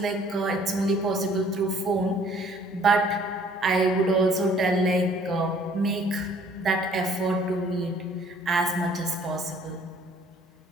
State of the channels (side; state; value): both; normal; correlation 0.57